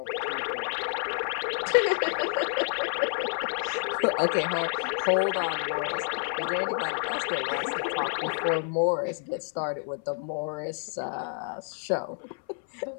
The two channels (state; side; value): silent; right; 59 dB below the other